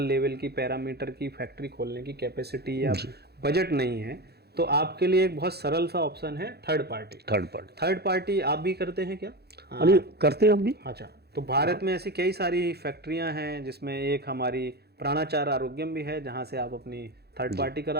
लेवल की पैरामीटर की फैक्ट्री खोलने की कैपेसिटी या बजट नहीं है, तो आपके लिए एक बहुत सरल सा ऑप्शन है थर्ड पार्टी। थर्ड पार्टी आप भी करते हैं क्या? करते हैं हम भी। अच्छा, तो भारत में ऐसी कई सारी फैक्ट्रियां हैं जिसमें एक हमारी प्राणाचार आरोग्यम भी है जहां से आप अपनी थर्ड पार्टी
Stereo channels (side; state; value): left; late; 0.47 ms